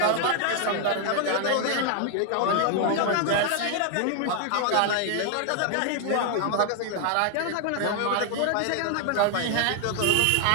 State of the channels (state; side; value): different; both; correlation 0.00